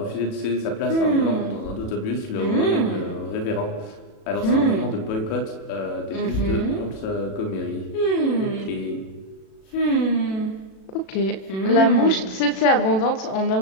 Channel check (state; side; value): late; right; 37 ms